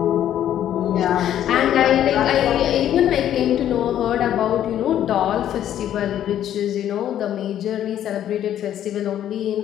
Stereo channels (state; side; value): quieter; right; 11.0 dB